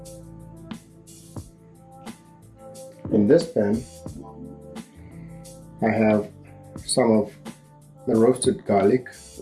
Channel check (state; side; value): identical; both; correlation 1.00